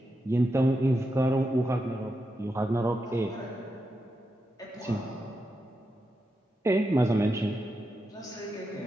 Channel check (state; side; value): normal; both; correlation 0.86